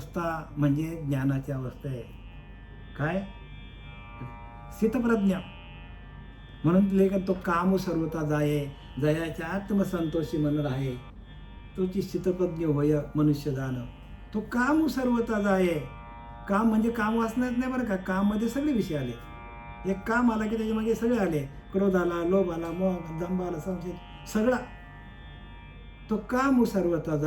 म्हणजे ज्ञानाची अवस्था आहे. काय? स्थितप्रज्ञ. म्हणून लेखन तो काम सर्वता जाये, जयाच्या आत्मसंतोषी मन राहे, तोची स्थितप्रज्ञ होय मनुष्य जाण. तो काम सर्वता जाये. काम म्हणजे काम वाचण्यात नाही बरं का, काम मध्ये सगळे विषय आले. एक काम आला की त्याच्यामध्ये सगळे आले, क्रोध आला, लोभ आला, मोह, दंभ आला, संशय, सगळा. तो काम सर्वता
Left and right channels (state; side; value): identical; both; correlation 1.00